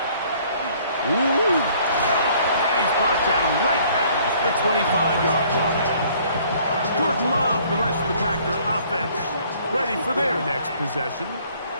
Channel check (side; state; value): both; inverted; correlation -0.59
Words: Ooh! And he's brought down right at the 25-yard line. Jordan Love, the rest of the Packer offense, ready for their next possession.